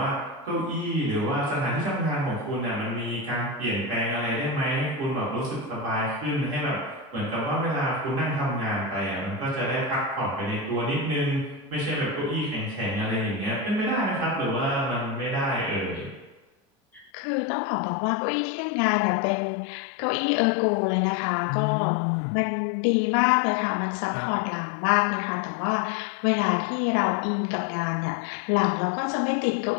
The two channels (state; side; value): drops out; right; at 17.1 s